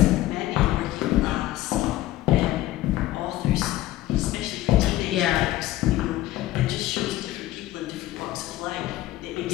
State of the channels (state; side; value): quieter; right; 15.8 dB